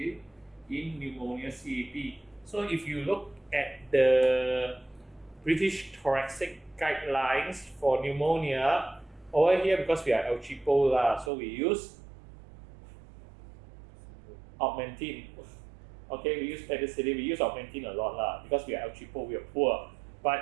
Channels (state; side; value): drops out; left; at 11.3 s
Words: pneumonia CAP. So if you look at the British Thoracic guidelines for pneumonia, over here because we are El Cheapo so we use Augmentin. Okay, we use penicillin, we use Augmentin a lot because we are El Cheapo, we are poor.